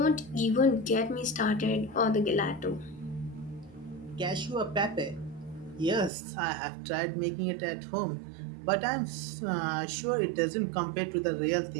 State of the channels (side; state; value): left; drops out; at 6.1 s